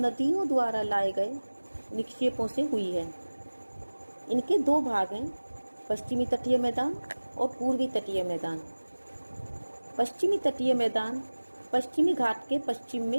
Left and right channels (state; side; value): inverted; both; correlation -1.00